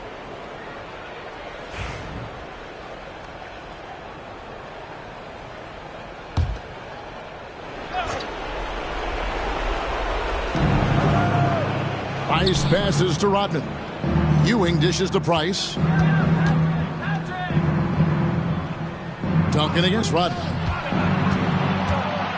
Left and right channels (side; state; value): both; identical; correlation 1.00